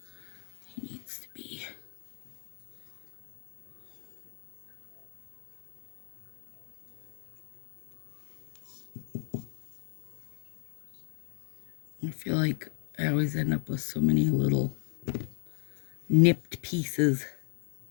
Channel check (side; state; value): right; silent; 55 dB below the other